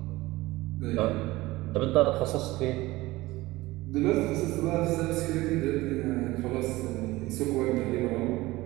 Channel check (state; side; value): quieter; left; 19.3 dB